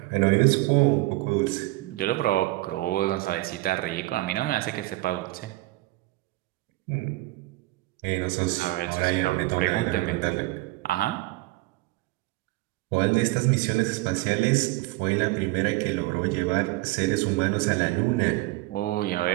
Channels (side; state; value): left; quieter; 20.1 dB